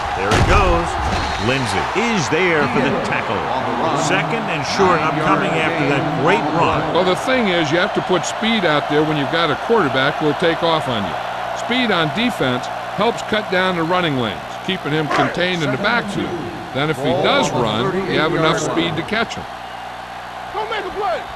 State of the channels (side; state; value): both; identical; correlation 1.00